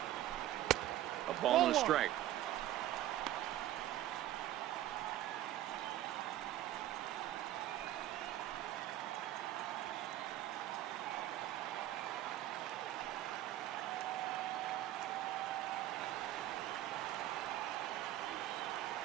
A ball and a strike.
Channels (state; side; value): quieter; left; 13.5 dB